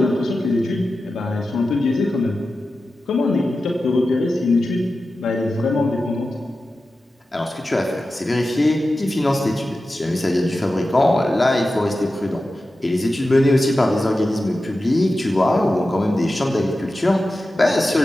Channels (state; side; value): normal; both; correlation 0.93